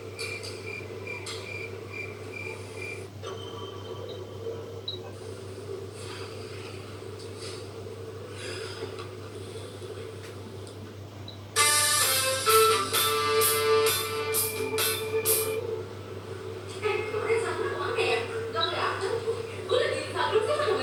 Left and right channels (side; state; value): both; identical; correlation 1.00